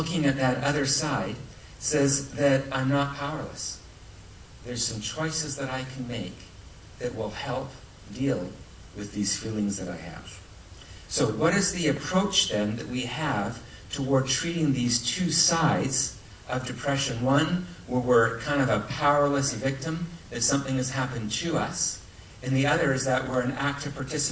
at that other side says that I'm not powerless. There's some choices that I can make that will help deal with these feelings that I have. So what is the approach then that we have toward treating these two sides of depression? One, where we're kind of a powerless victim, that something has happened to us. And the other is that we're an active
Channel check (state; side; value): identical; both; correlation 1.00